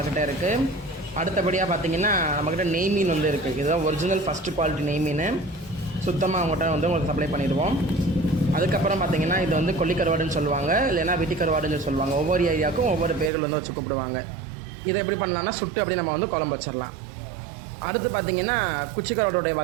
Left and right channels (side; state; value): left; drops out; at 13.3 s